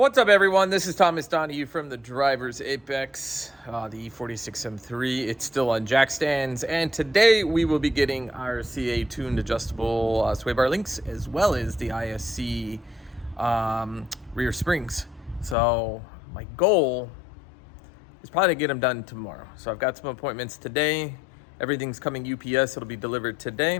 What's up, everyone? This is Thomas Donahue from the Driver's Apex, the E46 M3. It's still on jack stands, and today we will be getting our CA tuned adjustable sway bar links, as well as the ISC rear springs. So my goal is probably to get them done tomorrow. So I've got some appointments today. Everything's coming UPS. It'll be delivered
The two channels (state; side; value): drops out; right; at 15.6 s